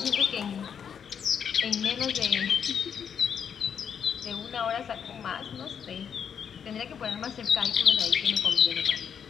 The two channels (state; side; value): quieter; right; 7.7 dB